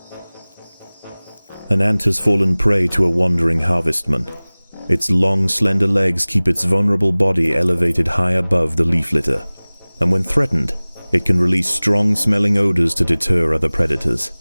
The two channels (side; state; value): both; inverted; correlation -1.00